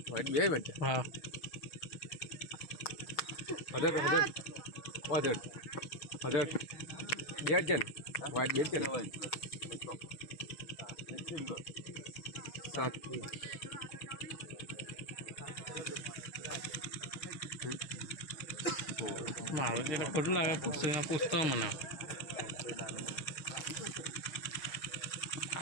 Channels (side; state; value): right; late; 6.3 ms